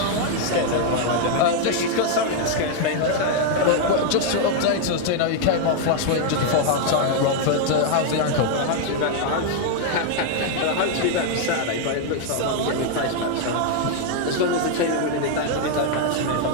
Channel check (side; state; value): both; different; correlation 0.00